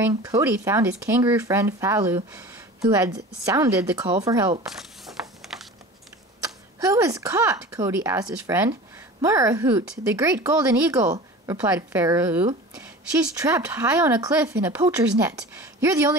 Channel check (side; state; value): both; normal; correlation 0.37